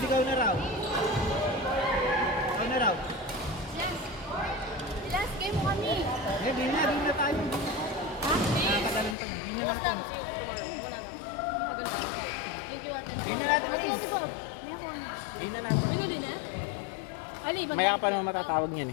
ikaw na raw. Ikaw na raw. Last game mo kami. Eh, di na tayo. Ha? Nakakatalan ka man. Bukas na. Muna na. Thank you, ate. Di na natin. Ate, ate, Bob. Di na natin. Ano din, ha? Ali, Maya pa naman matatawag niyan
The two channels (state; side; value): drops out; right; at 9.2 s